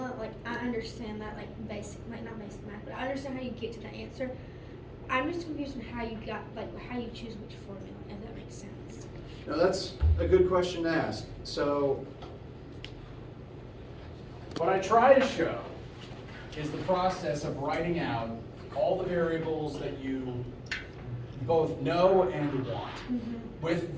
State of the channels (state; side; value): identical; both; correlation 1.00